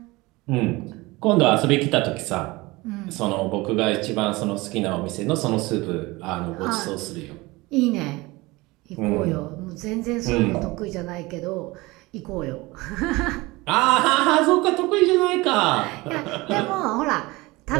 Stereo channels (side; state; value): left; quieter; 22.0 dB